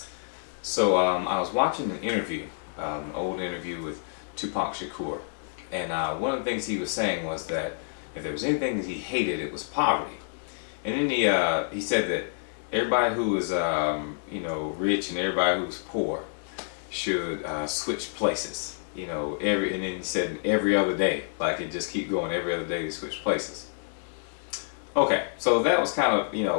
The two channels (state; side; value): silent; right; digital silence